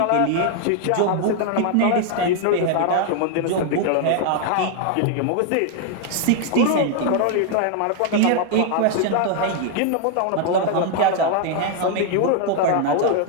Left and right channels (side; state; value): both; different; correlation 0.00